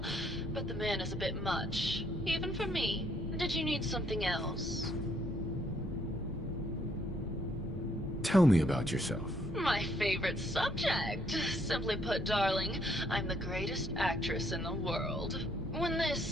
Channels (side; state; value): both; normal; correlation 0.69